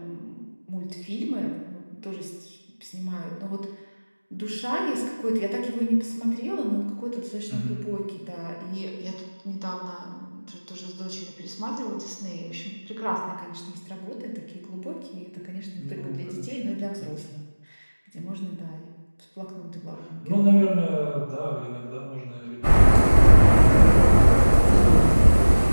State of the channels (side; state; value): both; inverted; correlation -1.00